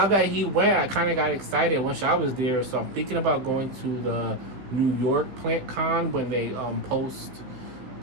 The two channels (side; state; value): left; late; 15 ms